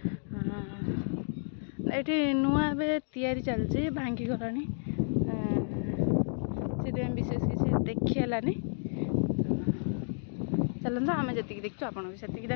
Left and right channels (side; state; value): right; silent; digital silence